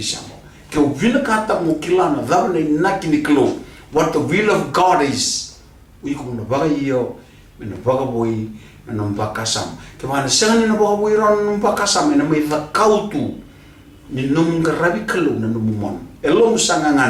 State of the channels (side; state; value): both; identical; correlation 1.00